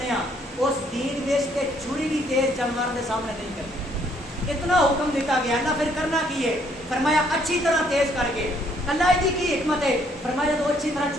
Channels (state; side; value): normal; both; correlation 0.66